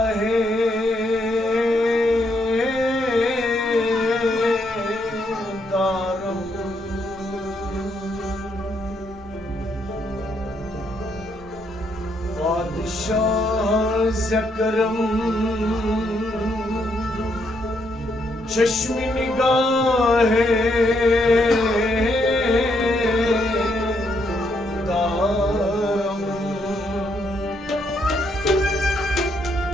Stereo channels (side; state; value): both; normal; correlation 0.75